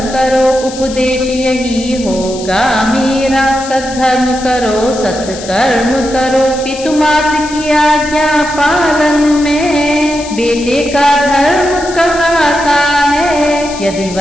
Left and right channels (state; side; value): noise; left; hiss, 13 dB below the sound